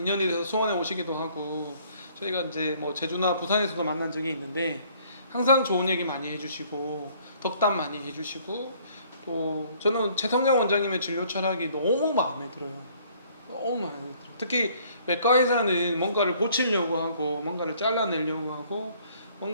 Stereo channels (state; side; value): inverted; both; correlation -0.60